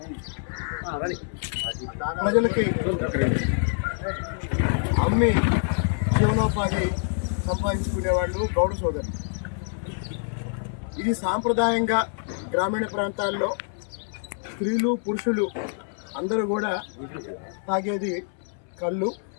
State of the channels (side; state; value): right; silent; 61 dB below the other